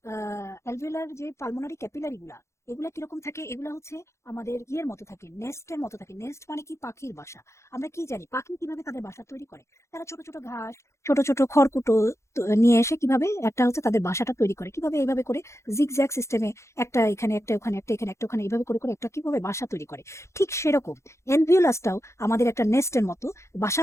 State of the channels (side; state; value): right; late; 0.14 ms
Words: অ্যালভিওলার যে পালমোনারি ক্যাপিলারি গুলা, এগুলা কিরকম থাকে, এগুলা হচ্ছে আমাদের ইয়ের মতো থাকে, নেস্টের মতো থাকে। নেস্ট মানে কি, পাখির বাসা। আমরা কি জানি পাখি কিভাবে তাদের বাসা তৈরি করে, তারা ছোট ছোট ঘাস, ছোট ছোট খড়কুটো নিয়ে এসে কিভাবে একটা হচ্ছে তাদের বাসাটা তৈরি করে, কিভাবে এইভাবে করে জিগজ্যাগ সিস্টেমে, একটা এখানে একটা ওখানে একটা এখানে একটা ওখানে এইভাবে করে করে একটা কিভাবে বাসা তৈরি করে, ঠিক সেরকম অ্যালভিওলাসটাও আমাদের একটা নেস্টের মতো,